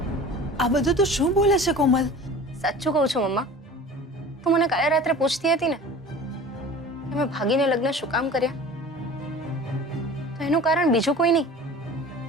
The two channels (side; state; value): both; normal; correlation 0.41